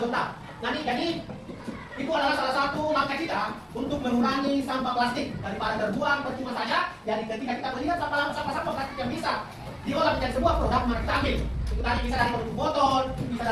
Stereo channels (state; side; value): identical; both; correlation 1.00